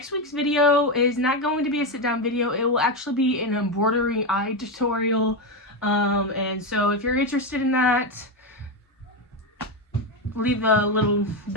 week's video is not going to be a sit-down video. It will actually be an embroidery eye tutorial. And so if you're interested in that, leave a little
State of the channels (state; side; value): normal; both; correlation 0.11